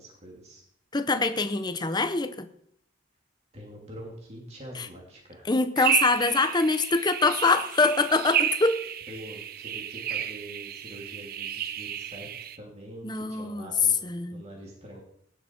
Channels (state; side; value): normal; both; correlation 0.21